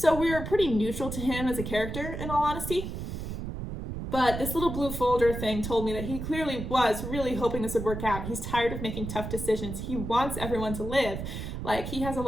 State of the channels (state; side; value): noise; right; rumble, 6 dB below the sound